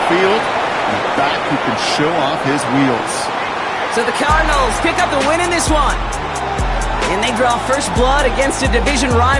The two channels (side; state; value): both; identical; correlation 1.00